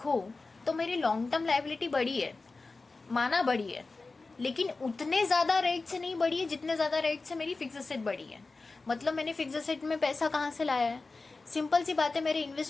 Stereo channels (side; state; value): right; quieter; 3.7 dB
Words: तो मेरी लॉन्ग टर्म लाइबिलिटी बढ़ी है, माना बढ़ी है, लेकिन उतने ज्यादा रेट से नहीं बढ़ी है जितने ज्यादा रेट से मेरी फिक्स असेट बढ़ी है. मतलब मैंने फिक्स असेट में पैसा कहाँ से लाया है? सिंपल सी बात है, मेरे